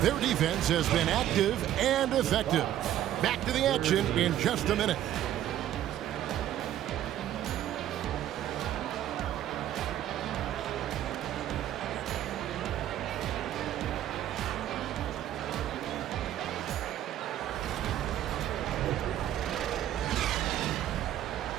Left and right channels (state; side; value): quieter; left; 12.1 dB